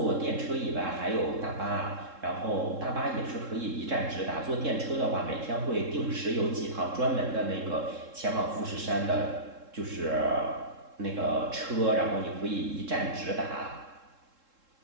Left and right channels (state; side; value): late; left; 3.7 ms